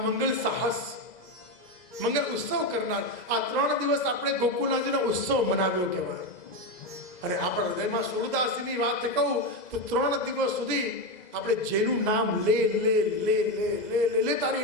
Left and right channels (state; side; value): late; right; 2.0 ms